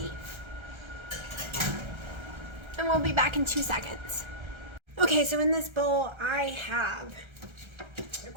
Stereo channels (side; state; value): left; late; 1.3 ms